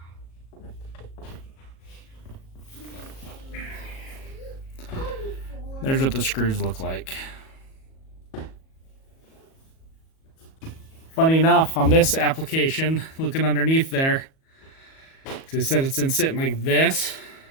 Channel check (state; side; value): late; right; 37 ms